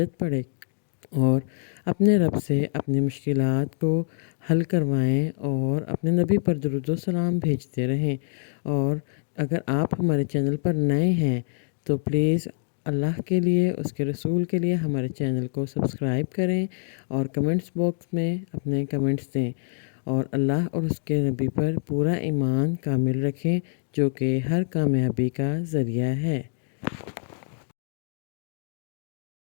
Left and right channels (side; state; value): right; silent; digital silence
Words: پڑھے اور اپنے رب سے اپنی مشکلات کو حل کروائیں اور اپنے نبی پر درود و سلام بھیجتے رہیں۔ اور اگر آپ ہمارے چینل پر نئے ہیں تو پلیز اللہ کے لیے، اس کے رسول کے لیے ہمارے چینل کو سبسکرائب کریں اور کمنٹس باکس میں اپنے کمنٹس دیں، اور اللہ اور اس کے نبی پر پورا ایمان کامل رکھیں جو کہ ہر کامیابی کا ذریعہ ہے۔